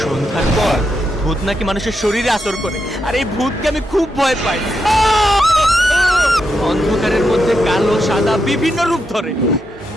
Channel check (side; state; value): both; normal; correlation 0.84